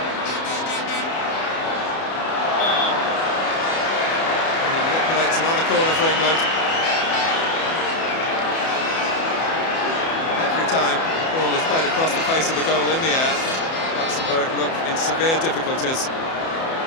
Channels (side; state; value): right; late; 31 ms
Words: And he manipulates another corner for England. Every time the ball is played across the face of the goal in the air, Luxembourg look in severe difficulties.